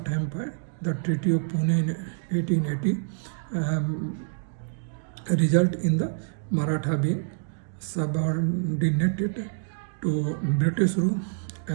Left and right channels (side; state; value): left; silent; digital silence